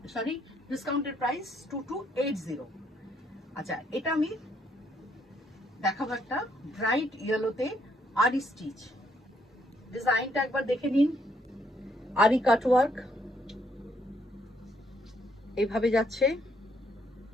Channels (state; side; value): normal; both; correlation 0.71